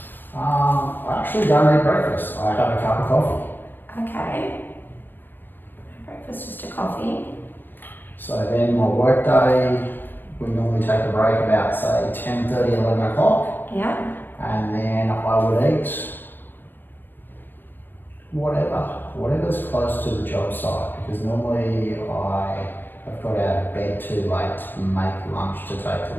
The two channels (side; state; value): right; late; 0.094 ms